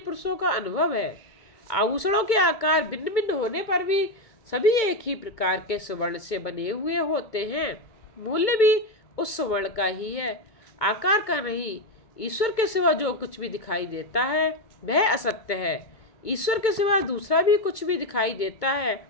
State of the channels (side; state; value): right; late; 2.2 ms